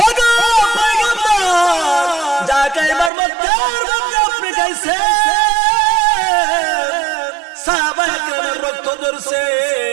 ওগো পয়গম্বর যা কাইবার মক্কার মধ্যে আপনি গাইছেন, সাহাবায়ে কেরামের রক্ত ঝরছে।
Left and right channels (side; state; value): left; drops out; at 3.1 s